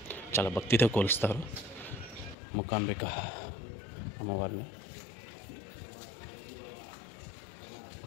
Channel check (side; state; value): right; drops out; at 2.4 s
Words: చాలా భక్తితో కొలుస్తారు మూకాంబిక అమ్మవారిని.